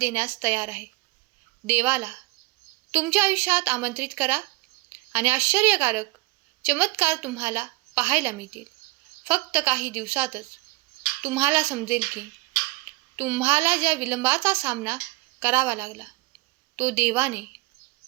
तयार आहे. देवाला तुमच्या आयुष्यात आमंत्रित करा आणि आश्चर्यकारक चमत्कार तुम्हाला पाहायला मिळतील. फक्त काही दिवसातच तुम्हाला समजेल की तुम्हाला ज्या विलंबाचा सामना करावा लागला तो देवाने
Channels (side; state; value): left; quieter; 23.1 dB